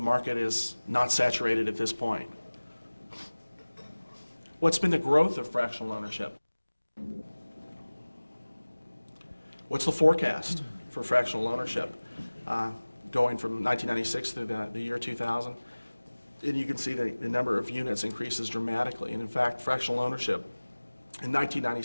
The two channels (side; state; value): both; inverted; correlation -1.00